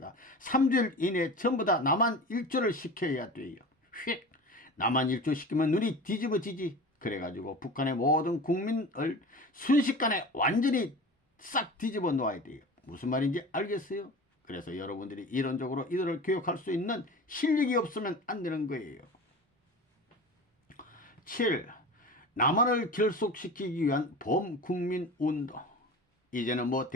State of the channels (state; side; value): normal; both; correlation 0.34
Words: 3주일 이내에 전부 다 남한 일조를 시켜야 돼요. 휙! 남한 일조 시키면 눈이 뒤집어지지. 그래가지고 북한의 모든 국민을 순식간에 완전히 싹 뒤집어 놓아야 돼요. 무슨 말인지 알겠어요? 그래서 여러분들이 이론적으로 이들을 교육할 수 있는 실력이 없으면 안 되는 거예요. 7. 남한을 결속시키기 위한 범국민운동. 이제는